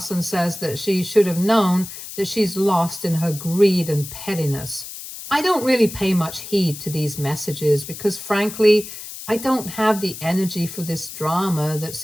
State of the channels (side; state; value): left; noise; hiss, 11 dB below the sound